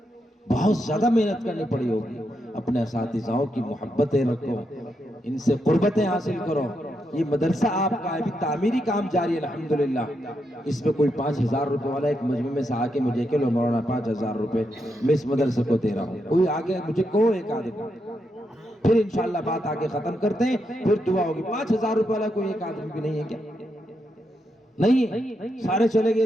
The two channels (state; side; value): normal; both; correlation 0.82